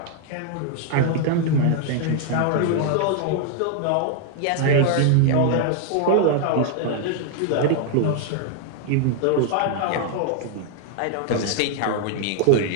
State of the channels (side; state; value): both; different; correlation 0.00